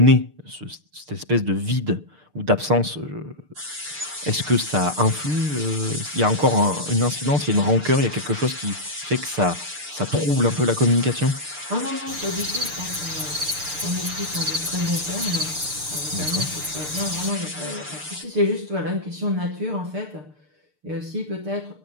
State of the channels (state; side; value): late; left; 6.7 ms